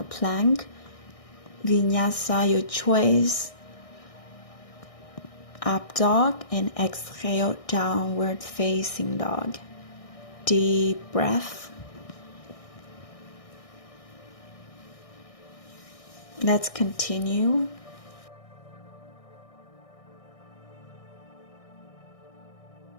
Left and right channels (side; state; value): right; late; 1.6 ms